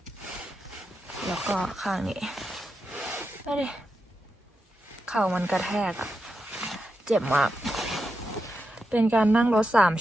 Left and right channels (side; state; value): both; normal; correlation 0.87